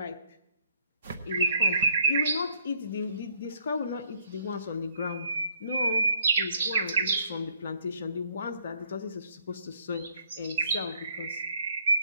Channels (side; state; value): both; inverted; correlation -0.66